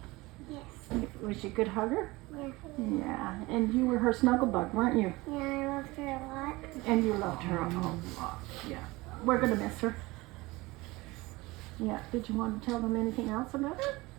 Yes. Was she a good hugger? Yeah. Yeah, and you were her snuggle bug, weren't you? Yeah, I loved her a lot. And you loved her a lot, yeah. We're going to miss her. Yeah, did you want to tell them anything else about her?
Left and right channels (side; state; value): left; quieter; 21.6 dB